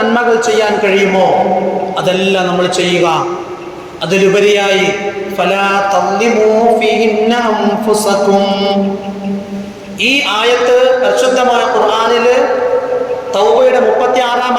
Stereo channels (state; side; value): identical; both; correlation 1.00